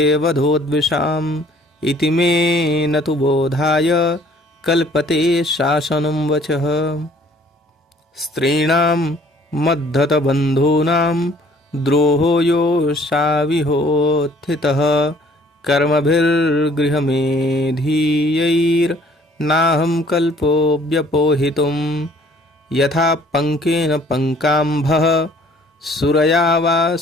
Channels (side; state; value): both; normal; correlation 0.57